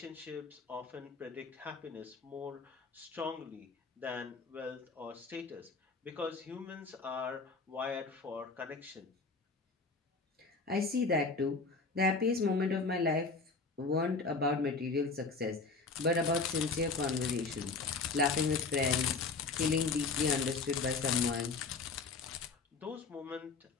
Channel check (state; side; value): quieter; right; 4.1 dB